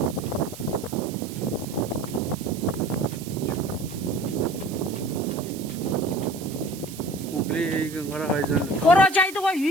Кора жайды кой,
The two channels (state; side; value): noise; right; hiss, 15 dB below the sound